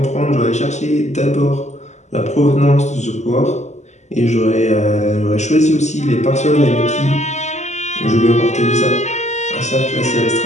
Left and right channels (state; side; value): late; right; 0.33 ms